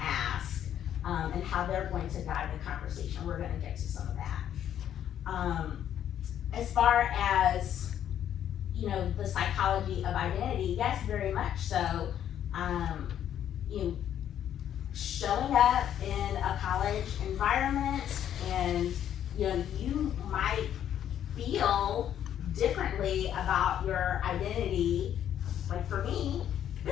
ask, and how they're going to guide the conversation. We're gonna get to some of that. As far as, the psychology of identity, yes, very much so. Showing up in a college environment, and you might feel differently about your identity. Like for me,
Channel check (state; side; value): quieter; right; 10.2 dB